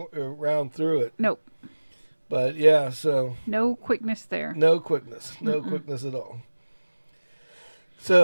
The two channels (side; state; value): both; inverted; correlation -1.00